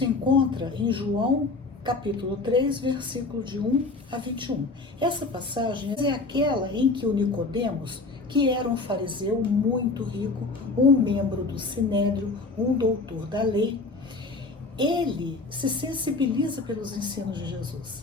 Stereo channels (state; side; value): quieter; right; 3.6 dB